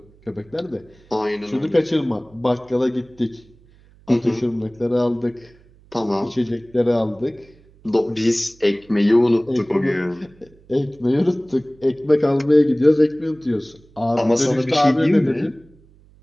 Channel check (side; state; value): right; noise; hum, 28 dB below the sound